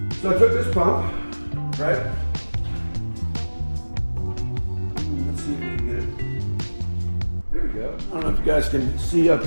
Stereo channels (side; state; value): both; inverted; correlation -1.00